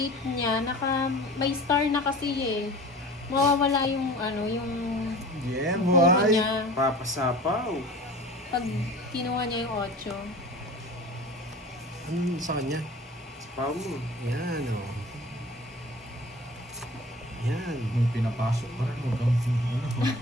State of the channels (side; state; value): both; normal; correlation 0.40